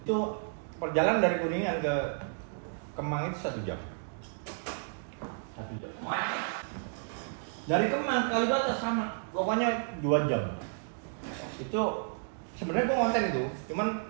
Itu perjalanan dari Kuningan ke Kemang itu 1 jam. 1 jam. Dari Kemang ke Kalibata sama, pokoknya 2 jam. Itu sebenarnya gue konten itu, cuman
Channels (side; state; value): left; silent; digital silence